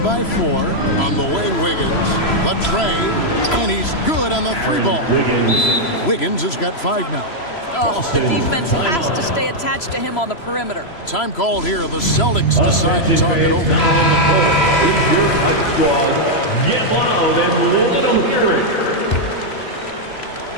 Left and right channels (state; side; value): late; right; 3.0 ms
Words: by 4. On the way, Wiggins. The tray. And he's good on the 3-ball. Wiggins has got 5 now. Oh, the defense has to stay attached to him on the perimeter. Time called here. The Celtics decide to talk it over. Get loud and let them hear it.